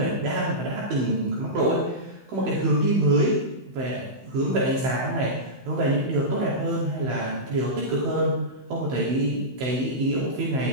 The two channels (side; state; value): left; late; 16 ms